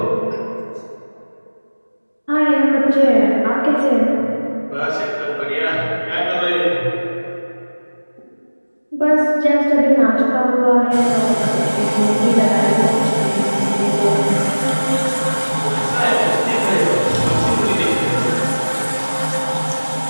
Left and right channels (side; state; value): both; inverted; correlation -1.00